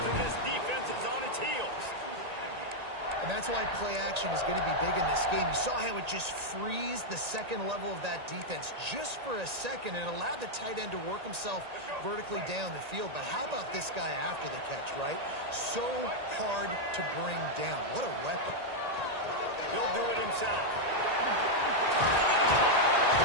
and this defense is on its heels. And that's why play action is going to be big in this game. You saw how it just frees the second level of that defense just for a second and allowed the tight end to work himself vertically down the field. But how about this guy after the catch, right? So hard to bring down. What a weapon. He'll do it himself.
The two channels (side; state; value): left; late; 1.8 ms